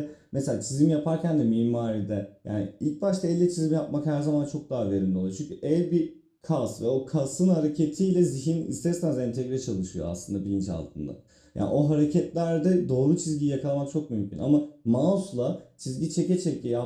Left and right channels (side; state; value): both; identical; correlation 1.00